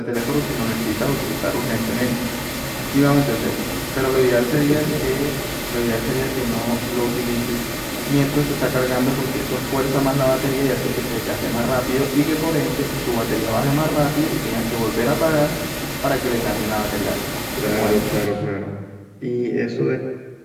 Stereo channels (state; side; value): identical; both; correlation 1.00